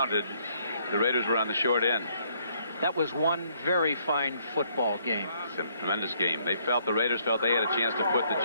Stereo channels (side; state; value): both; inverted; correlation -0.68